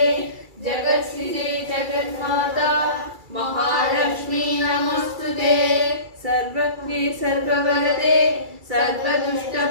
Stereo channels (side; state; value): left; late; 2.3 ms